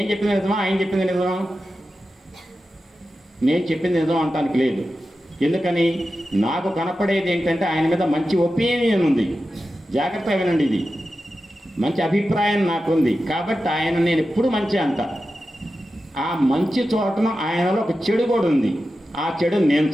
చెప్పింది నిజమా, ఆయన చెప్పింది నిజమా? నేను చెప్పింది నిజం అంటానికి లేదు. ఎందుకని? నాకు కనపడేది ఏంటంటే ఆయన మీద మంచి ఒపీనియన్ ఉంది. జాగ్రత్తగా వినండి, ఇది మంచి అభిప్రాయం నాకుంది కాబట్టి ఆయన నేను ఎప్పుడు మంచి అంట. ఆ మంచి చోటన ఆయనలో ఒక చెడు కూడా ఉంది. ఆ చెడు నేను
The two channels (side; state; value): both; normal; correlation 0.92